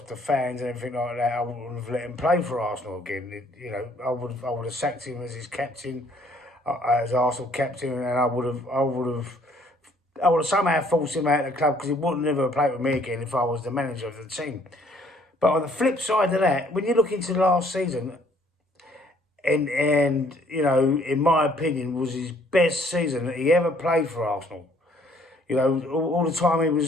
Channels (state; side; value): normal; both; correlation 0.62